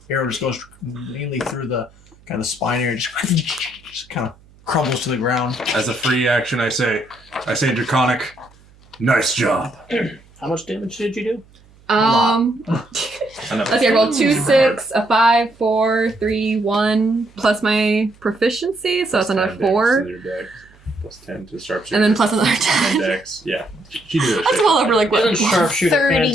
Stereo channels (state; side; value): noise; right; hum, 28 dB below the sound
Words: arrow just goes mainly through the kind of spine area. Just kind of crumbles to the ground. As a free action, I say draconic. Nice job. How much damage did you do? Let's see, I rolled 2, 6, a 5, 4, 3, 1, plus my proficiency, so it's another 4. Plus 10 to sharpshooter. And then plus another And 10. dex. Yeah. She did that That's shit. well over like what? Isn't sharpshooter 30,